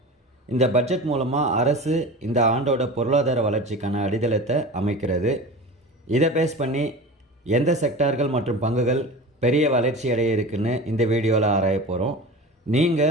இந்த பட்ஜெட் மூலமாக அரசு இந்த ஆண்டோட பொருளாதார வளர்ச்சிக்கான அடித்தளத்தை அமைக்கிறது. இதை பேஸ் பண்ணி எந்த செக்டார்கள் மற்றும் பங்குகள் பெரிய வளர்ச்சி அடைய இருக்குன்னு இந்த வீடியோவில் ஆராய போகிறோம்.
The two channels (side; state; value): both; normal; correlation 0.33